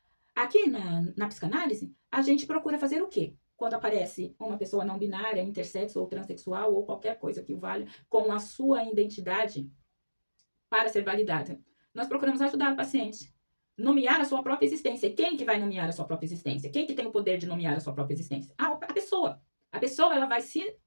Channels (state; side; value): inverted; both; correlation -1.00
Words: Aqui na psicanálise, a gente procura fazer o quê? Quando aparece uma pessoa não binária, intersexo ou transexual ou qualquer coisa que o valha com a sua identidade para ser validada. Nós procuramos ajudar o paciente. Nomear a sua própria existência. E quem que vai nomear a sua própria existência? Quem que tem o poder de nomear a sua própria existência? A pessoa. A pessoa, ela vai se